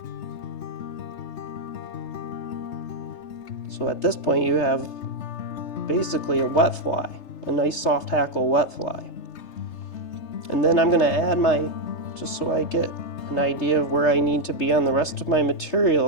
So at this point you have basically a wet fly, a nice soft hackle wet fly. And then I'm going to add my, just so I get an idea of where I need to be on the rest of my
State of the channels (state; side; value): late; right; 3.3 ms